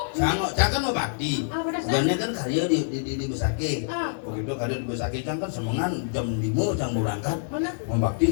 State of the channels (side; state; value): right; silent; digital silence